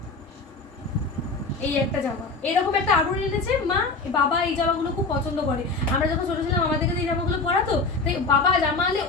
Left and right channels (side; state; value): right; quieter; 3.8 dB